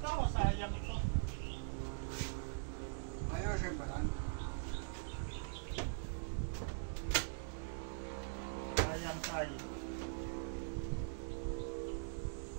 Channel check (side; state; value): left; silent; digital silence